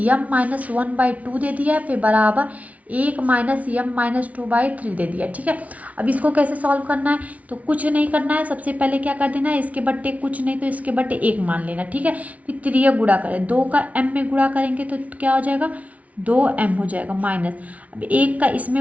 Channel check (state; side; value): late; left; 0.068 ms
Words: यम -1/2 दे दिया, फिर बराबर 1 - यम -2/3 दे दिया, ठीक है। अब इसको कैसे सॉल्व करना है, तो कुछ नहीं करना है, सबसे पहले क्या कर देना है, इसके बट्टे कुछ नहीं तो इसके बट्टे 1 मान लेना, ठीक है। फिर 3 गुणा करें, 2 का m में गुणा करेंगे तो क्या हो जाएगा 2m हो जाएगा माइनस। अब 1 का